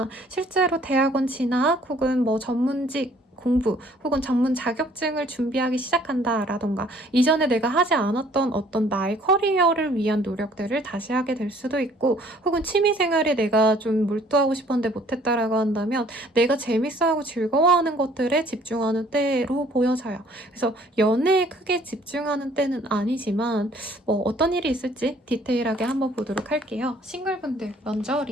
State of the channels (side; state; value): both; normal; correlation 0.58